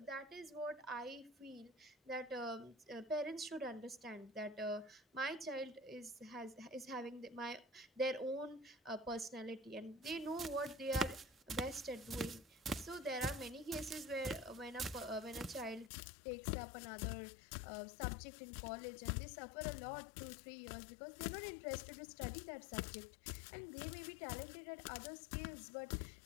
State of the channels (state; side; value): drops out; right; at 15.9 s